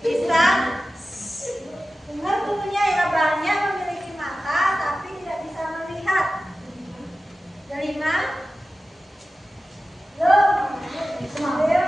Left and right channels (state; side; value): normal; both; correlation 0.95